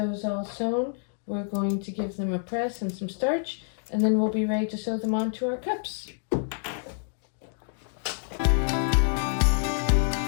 all sewn. We're going to give them a press and some starch, and then we'll be ready to sew them onto our cups.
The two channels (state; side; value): silent; right; digital silence